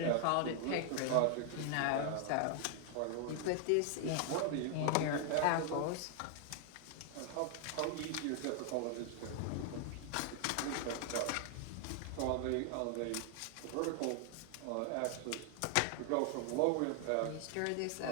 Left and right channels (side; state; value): both; different; correlation 0.00